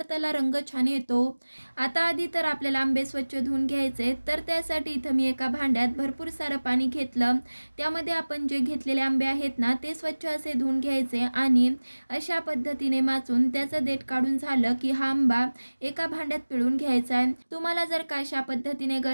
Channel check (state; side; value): inverted; both; correlation -1.00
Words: रंग छान येतो. आता आधी तर आपल्याला आंबे स्वच्छ धुवून घ्यायचे. तर त्यासाठी इथं मी एका भांड्यात भरपूर सारं पाणी घेतलं. त्यामध्ये आपण जे घेतलेले आंबे आहेत ना ते स्वच्छ असे धुवून घ्यायचे आणि अशा पद्धतीने माचून त्याचं देठ काढून झालं की हा आंबा एका भांड्यात पिळून घ्यायचा आहे. तुम्हाला जर का अशा पद्धतीने